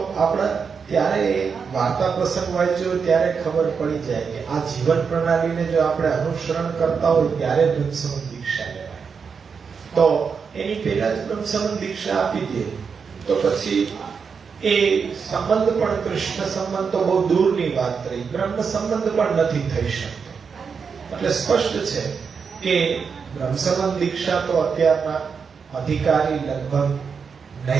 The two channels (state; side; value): quieter; left; 5.9 dB